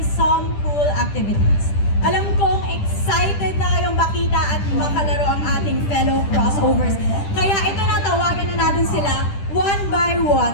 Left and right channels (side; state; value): right; late; 10 ms